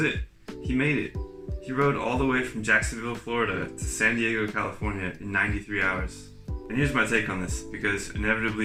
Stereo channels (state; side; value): identical; both; correlation 1.00